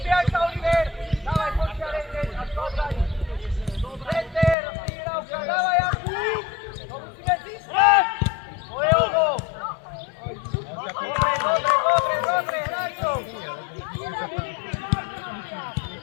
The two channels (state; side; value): drops out; right; at 4.5 s